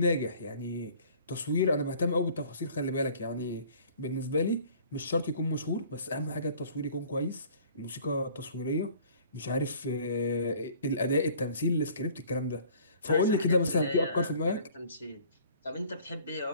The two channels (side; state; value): both; inverted; correlation -0.52